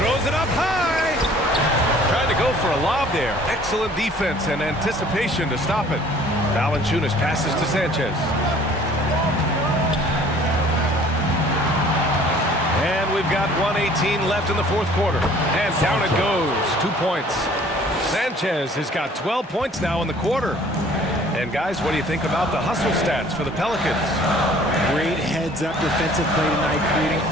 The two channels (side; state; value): both; normal; correlation 0.53